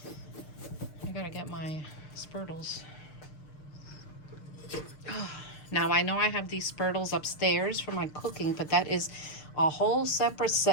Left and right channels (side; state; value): right; late; 6.6 ms